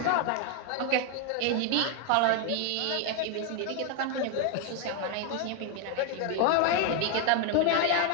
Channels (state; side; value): different; both; correlation 0.01